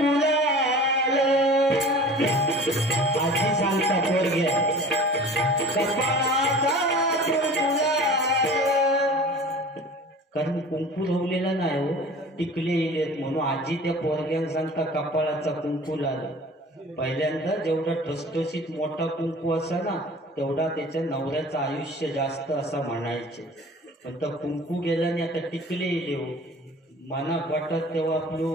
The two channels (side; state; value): both; normal; correlation 0.42